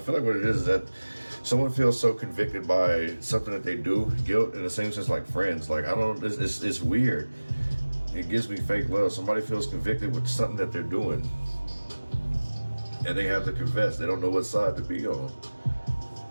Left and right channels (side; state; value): both; inverted; correlation -1.00